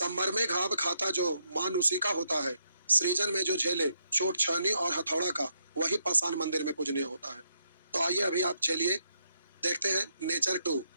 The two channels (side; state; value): both; inverted; correlation -0.77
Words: में घाव खाता जो मान उसी का होता है, सृजन में जो झेले चोट छानी और हथौड़ा का, वही पाषाण मंदिर में पूजनीय होता है। तो आइए अभी आप चलिए देखते हैं नेचर टू।